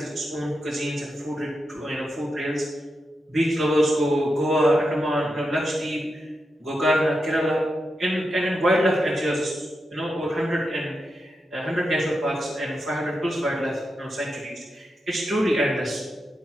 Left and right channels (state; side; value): normal; both; correlation 0.87